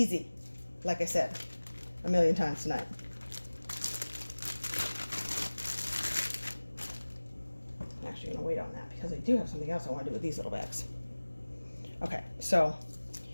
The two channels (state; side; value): inverted; both; correlation -1.00